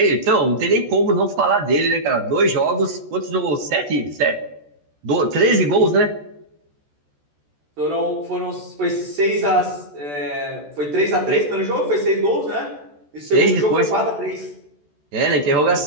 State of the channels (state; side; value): late; left; 14 ms